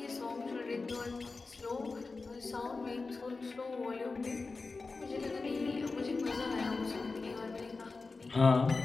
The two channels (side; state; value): right; quieter; 3.9 dB